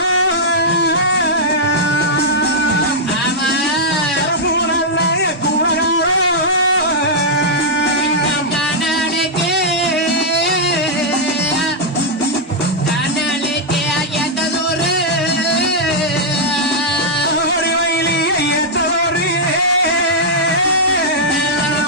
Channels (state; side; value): normal; both; correlation -0.06